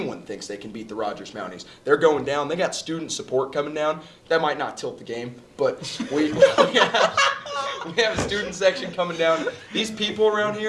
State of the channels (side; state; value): both; identical; correlation 1.00